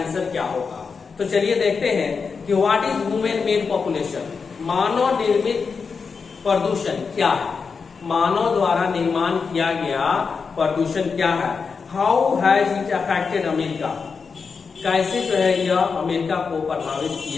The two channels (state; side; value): quieter; right; 5.3 dB